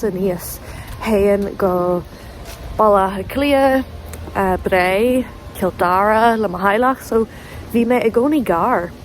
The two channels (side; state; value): both; identical; correlation 1.00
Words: níos. Héan go balla a clia, Bray, Kildara, le Mahailach, so bhí mé I gcónaí gar.